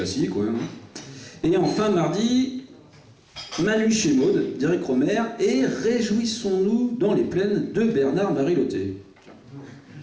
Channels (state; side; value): identical; both; correlation 1.00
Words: ouais. Hein. Et enfin, mardi, Manu chez Maud d'Éric Romer. Et Réjouissons-nous dans les plaines de Bernard-Marie Loté.